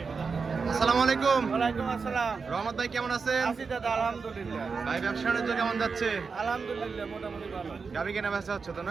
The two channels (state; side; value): quieter; left; 5.0 dB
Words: আসসালামু আলাইকুম। ওয়ালাইকুম আসসালাম। রহমত ভাই কেমন আছেন? আছি দাদা, আলহামদুলিল্লাহ। ভাই ব্যবসা বাণিজ্য কেমন যাচ্ছে? আলহামদুলিল্লাহ মোটামুটি ভালো। গাভী কেনা বেচা হচ্ছে তো